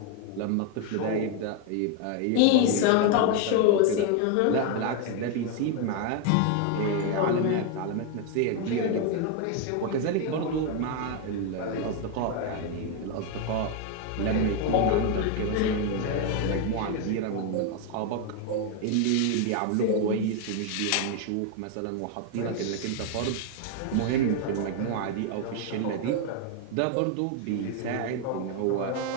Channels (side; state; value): both; different; correlation 0.01